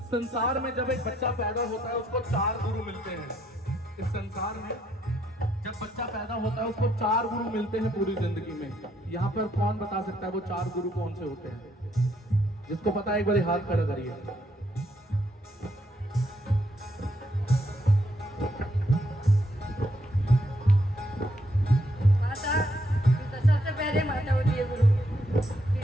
संसार में जब एक बच्चा पैदा होता है उसको 4 गुरु मिलते हैं। इस संसार में जब बच्चा पैदा होता है उसको 4 गुरु मिलते हैं पूरी जिंदगी में। यहाँ पर कौन बता सकता है वो 4 गुरु कौन से होते हैं? जिसको पता है एक बार हाथ खड़ा करिए। सबसे पहले माता होती है गुरु,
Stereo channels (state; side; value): normal; both; correlation 0.74